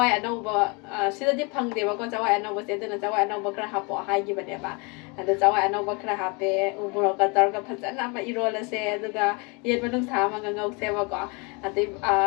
anau ba sida di phang de ba ko chawai anau ba se duna chawai anau ba khara hapo hai gi ba de ba. Ada chawai anau ba khara hape umuro ka tar ka phajana ma irol se aduga yen manung sa ma ngau se ba ko ati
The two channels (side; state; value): right; quieter; 30.6 dB